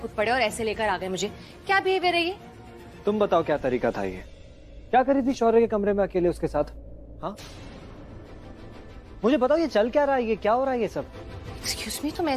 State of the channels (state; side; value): identical; both; correlation 1.00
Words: पड़े और ऐसे लेकर आ गए मुझे। क्या बिहेवियर है ये? तुम बताओ क्या तरीका था ये? क्या करी थी शौर्य के कमरे में अकेले उसके साथ? हाँ, मुझे बताओ ये चल क्या रहा है, ये क्या हो रहा है ये सब? एक्सक्यूज मी, तुम